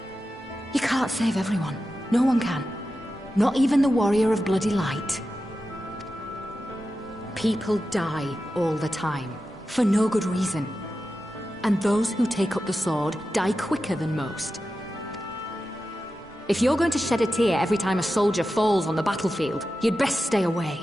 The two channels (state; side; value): normal; both; correlation 0.92